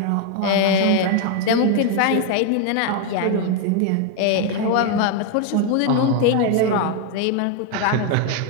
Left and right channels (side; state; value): both; different; correlation 0.01